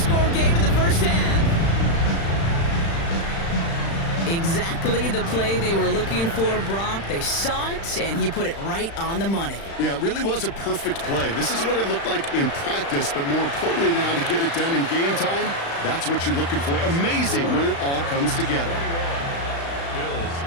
game in the first half. Exactly the play they were looking for, Brock. They saw it, and he put it right on the money. Yeah, it really was a perfect play. This is what it looked like in practice, but more importantly now to get it done in game time, that's what you're looking for. Amazing when it all comes together. Bills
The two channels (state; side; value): late; right; 36 ms